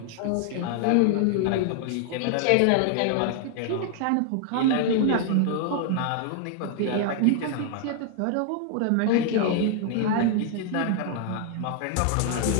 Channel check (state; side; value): different; both; correlation 0.00